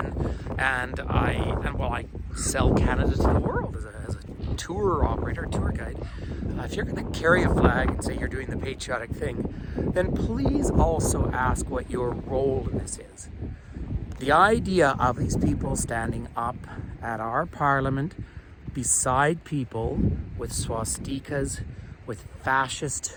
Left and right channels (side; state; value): both; identical; correlation 1.00